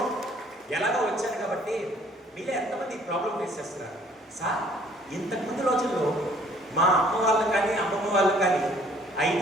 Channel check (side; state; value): both; normal; correlation 0.59